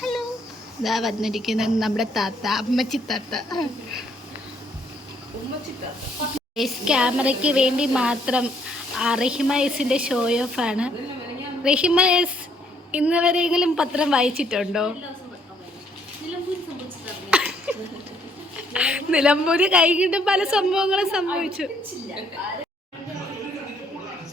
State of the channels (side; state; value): both; normal; correlation 0.67